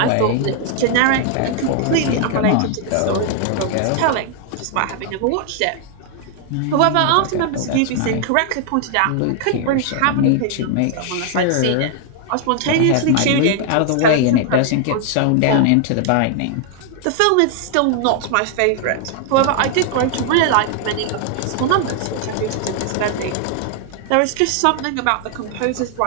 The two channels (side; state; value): both; different; correlation 0.00